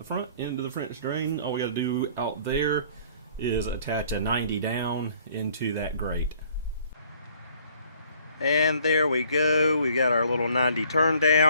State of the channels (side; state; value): both; inverted; correlation -0.58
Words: front into the French drain. All we got to do out there is attach a 90 down into that grate. And there we go. We got our little 90 turn